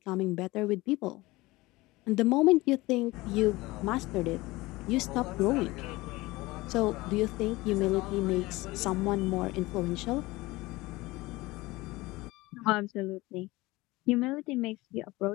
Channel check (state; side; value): quieter; right; 20.6 dB